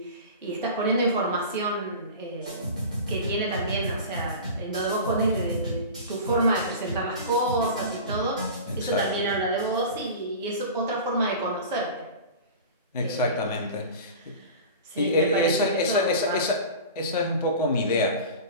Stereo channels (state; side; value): inverted; both; correlation -0.34